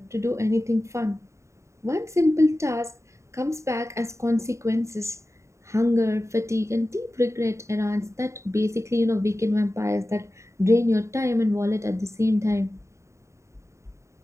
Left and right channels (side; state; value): left; late; 0.14 ms